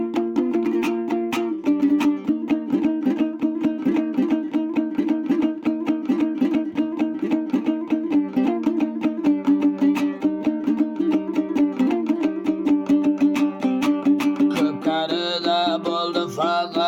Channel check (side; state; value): both; identical; correlation 1.00